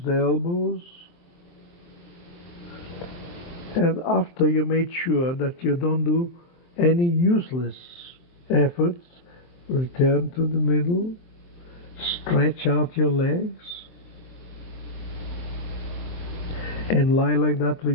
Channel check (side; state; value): right; late; 23 ms